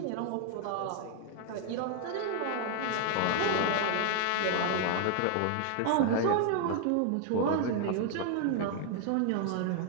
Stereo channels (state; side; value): different; both; correlation 0.00